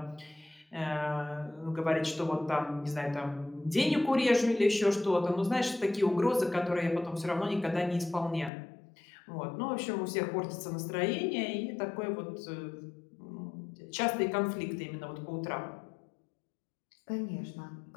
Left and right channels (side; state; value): right; drops out; at 8.5 s